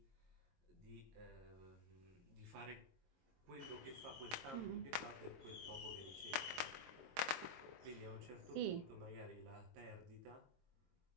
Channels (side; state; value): left; late; 22 ms